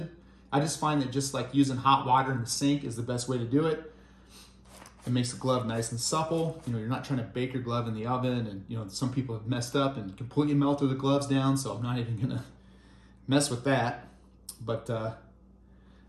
I just find that just like using hot water in the sink is the best way to do it. It makes the glove nice and supple. You're not trying to bake your glove in the oven, and some people have messed up and completely melted the gloves down, so I'm not even gonna mess with that. But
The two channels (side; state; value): both; identical; correlation 1.00